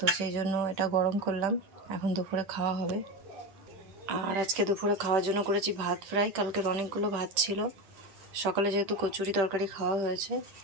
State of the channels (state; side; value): late; left; 10 ms